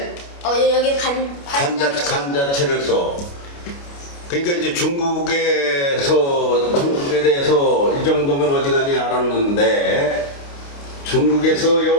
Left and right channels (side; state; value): right; late; 29 ms